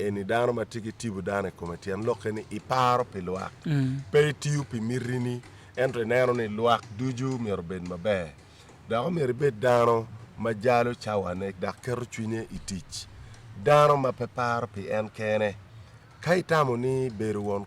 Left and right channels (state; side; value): identical; both; correlation 1.00